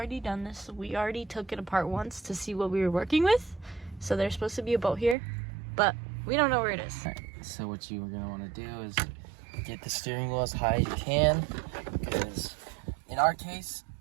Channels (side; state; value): left; drops out; at 5.2 s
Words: done this. We already took it apart once to see what we were working with. So there's supposed to be a bolt here, but we don't know where it is. All right, so what you are gonna want to do is get the steering wheel as high as you can, because in our case,